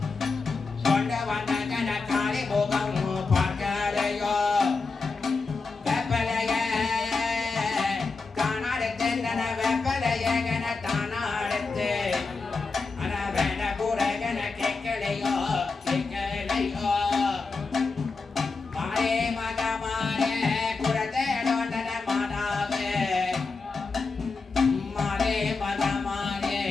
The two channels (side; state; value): right; quieter; 4.3 dB